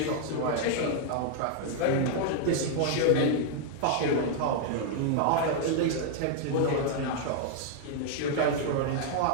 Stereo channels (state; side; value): different; both; correlation 0.00